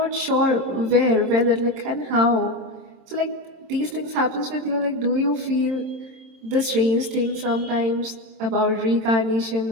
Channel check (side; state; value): left; late; 27 ms